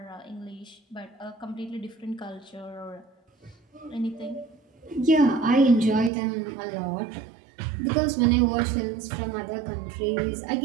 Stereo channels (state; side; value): drops out; left; at 6.1 s